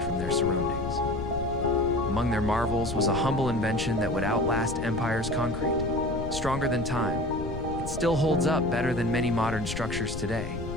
from their surroundings. Among their marvels was a humble invention that would outlast empire's concrete. Stronger than time, it still holds up better than many modern structures today.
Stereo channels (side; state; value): left; noise; rumble, 7 dB below the sound